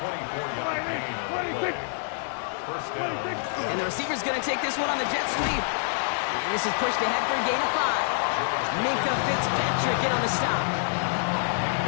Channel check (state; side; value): silent; right; digital silence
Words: 24-yard gain on the play. First down. And the receiver's going to take this one on the jet sweep. And this is pushed ahead for a gain of 5. Minka Fitzpatrick in on the stop.